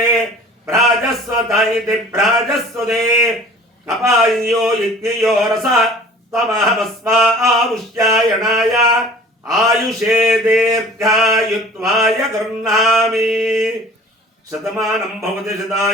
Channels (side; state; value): both; normal; correlation 0.46